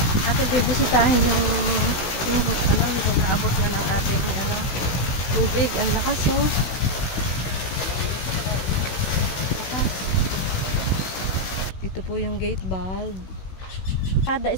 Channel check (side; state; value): right; late; 16 ms